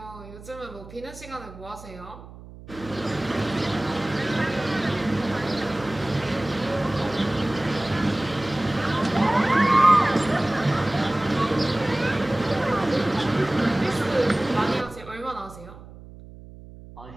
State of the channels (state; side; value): noise; right; hum, 17 dB below the sound